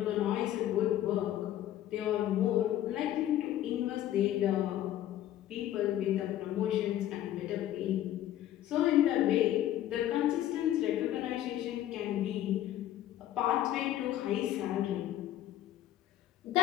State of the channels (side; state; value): right; quieter; 12.6 dB